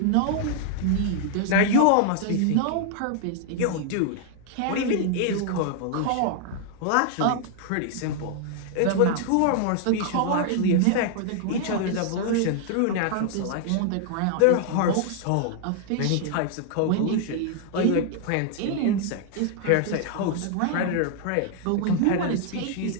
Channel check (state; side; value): different; both; correlation 0.00